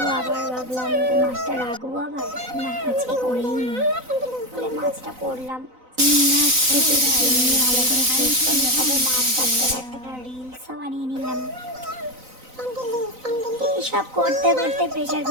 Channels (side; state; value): left; late; 4.0 ms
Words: আবার ভাবলাম যে মাছটা রাখবো, আবার না আজকে করেই নিই বলে মাছটা করলাম। মাছ কেটে নিয়ে ভালো করে ফ্রেশ করে তারপর মাছ কাটতে কাটতে একটা রিলসও বানিয়ে নিলাম। এইসব করতে করতে প্রেশার